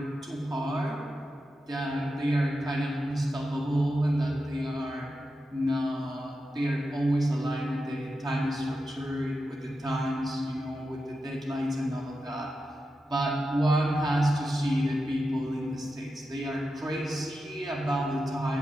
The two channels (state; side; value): normal; both; correlation 0.90